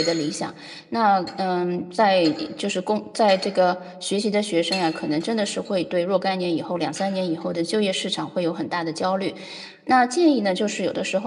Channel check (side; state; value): both; identical; correlation 1.00